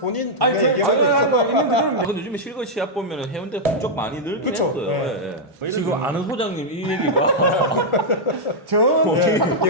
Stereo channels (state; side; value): normal; both; correlation -0.05